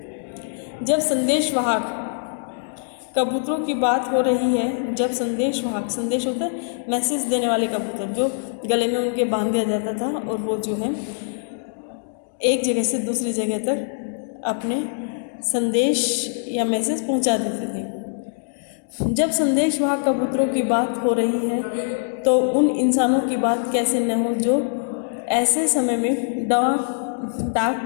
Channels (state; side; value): silent; right; digital silence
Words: जब संदेशवाहक कबूतरों की बात हो रही है, जब संदेशवाहक, संदेश होता है मैसेज देने वाले कबूतर जो गले में उनके बांध दिया जाता था और वो जो है एक जगह से दूसरी जगह तक अपने संदेश या मैसेज पहुंचा देते थे। जब संदेशवाहक कबूतरों की बात हो रही है तो उन इंसानों की बात कैसे न हो जो ऐसे समय में डाक